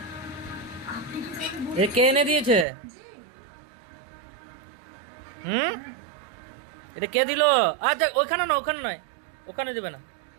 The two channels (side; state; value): left; drops out; at 2.7 s